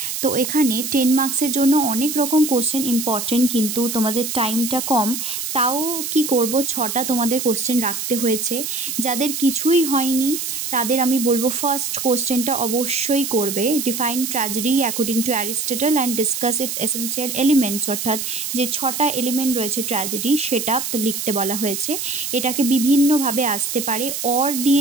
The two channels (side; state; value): right; noise; hiss, 4 dB below the sound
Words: তো এখানে 10 মার্কসের জন্য অনেক রকম কোশ্চেন ইম্পর্টেন্ট, কিন্তু তোমাদের টাইমটা কম, তাও কি করব 6টা তোমাদের কোশ্চেন রাখতে হয়েছে। যাদের কিছুই হয়নি তাদের আমি বলবো ফার্স্ট কোশ্চেনটা অবশ্যই করবে, define tragedy according to Aristotle and discuss it's essential elements, অর্থাৎ যে 6টা এলিমেন্ট রয়েছে ট্র্যাজেডি সেটা তো লিখতে বলা হয়েছে। এটাকে বিভিন্নভাবে আসতে পারে, অর